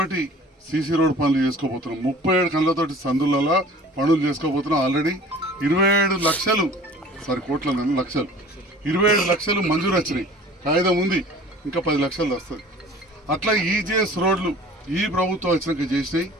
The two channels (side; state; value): both; normal; correlation 0.46